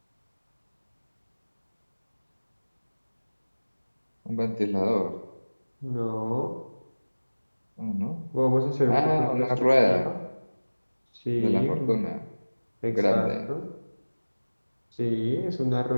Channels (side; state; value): both; inverted; correlation -1.00